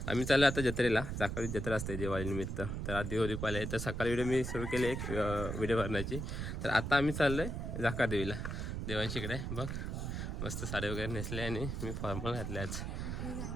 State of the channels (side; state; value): right; noise; rumble, 3 dB below the sound